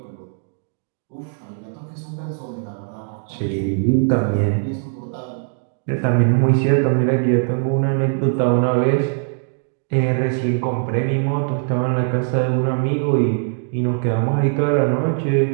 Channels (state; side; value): silent; left; digital silence